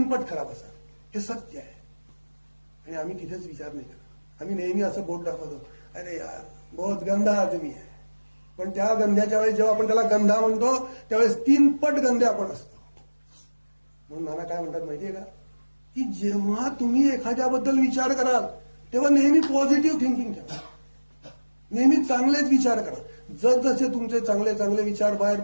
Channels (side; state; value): both; inverted; correlation -1.00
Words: पट खराब असाल. हे सत्य आहे. आणि आम्ही तिथेच विचार नाही करत. आम्ही नेहमी असं बोट दाखवतो, अरे यार बहुत गंधा आदमी आहे. पण त्या गंध्याच्या वेळेस जेव्हा आपण त्याला गंधा म्हणतो त्यावेळेस 3 पट गंधे आपण असतो. म्हणून नाना काय म्हणतात माहितीये का, की जेव्हा तुम्ही एखाद्याबद्दल विचार कराल तेव्हा नेहमी पॉझिटिव्ह थिंकिंग ठेवा. नेहमी चांगलेच विचार करा. जसजसे तुमचे चांगले चांगले विचार बाहेर